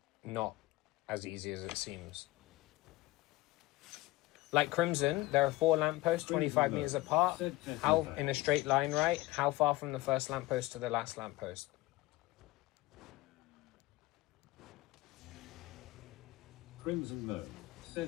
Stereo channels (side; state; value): right; quieter; 19.1 dB